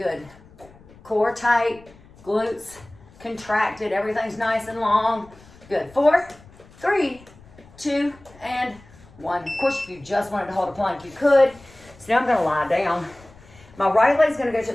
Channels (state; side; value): noise; left; rumble, 24 dB below the sound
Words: Core tight, glutes contracted, everything's nice and long. Good. 4, 3, 2, and 1. Of course, if you just wanted to hold a plank, you could. So now I'm gonna lie down. My right leg's gonna go to